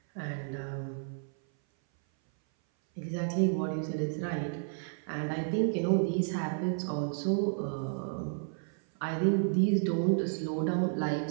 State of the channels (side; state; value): left; silent; 57 dB below the other